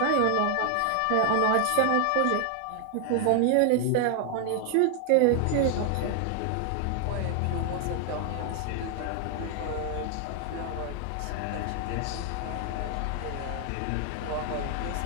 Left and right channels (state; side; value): different; both; correlation 0.00